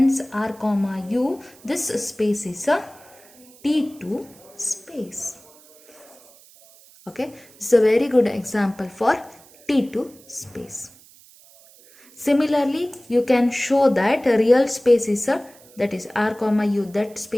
R comma U, this space is a T2 space. Okay, this is a very good example for T2 space. Similarly, you can show that a real space is a, that is R comma U, that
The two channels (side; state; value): right; noise; hiss, 25 dB below the sound